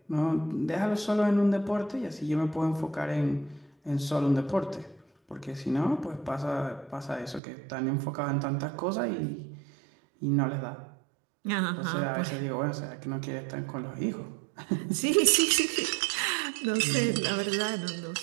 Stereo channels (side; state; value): left; drops out; at 7.4 s